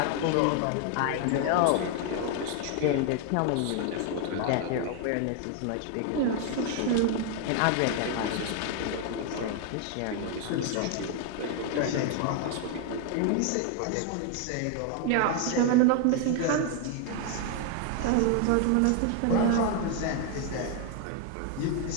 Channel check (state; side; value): different; both; correlation 0.00